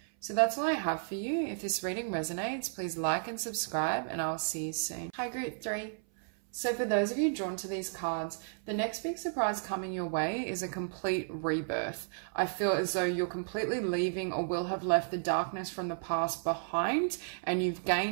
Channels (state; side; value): silent; left; 56 dB below the other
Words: So that's all I have for you. If this reading resonates, please like and subscribe, and I'll see you soon. Hi, Group 3. So for those of you drawn to these cards, the next big surprise coming your way is a complete rebirth. I feel as though you're completely leaving or will have left the darkness from the past behind, and you've